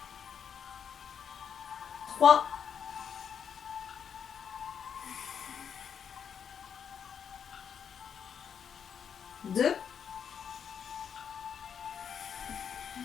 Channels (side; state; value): right; quieter; 7.6 dB